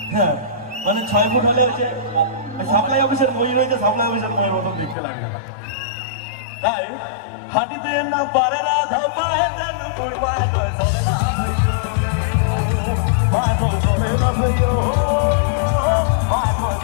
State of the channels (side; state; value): right; drops out; at 5.0 s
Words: হ্যাঁ, মানে 6 ফুট হলে হচ্ছে সাপ্লাই অফিসের মই রয়েছে, সাপ্লাই অফিসের মইয়ের মতন দেখতে লাগবে। তাই হাঁটিতে না পারে না ধাপাতে না পড়বা